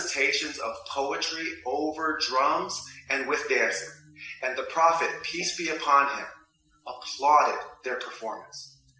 of poetry over drums and with dancing. And the Prophet, peace be upon him, applauded their performance.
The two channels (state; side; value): identical; both; correlation 1.00